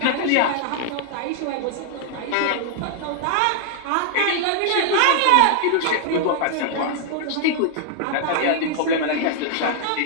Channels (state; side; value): different; both; correlation -0.01